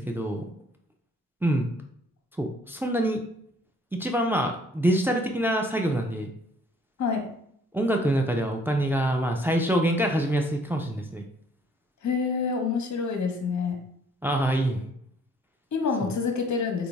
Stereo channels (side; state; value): both; normal; correlation 0.61